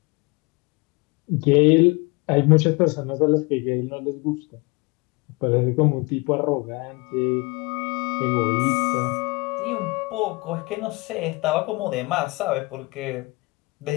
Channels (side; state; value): right; quieter; 25.9 dB